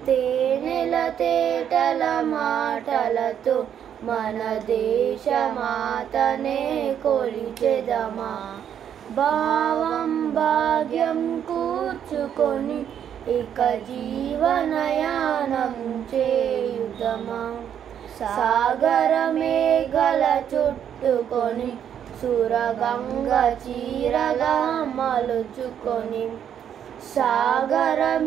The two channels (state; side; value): quieter; left; 9.1 dB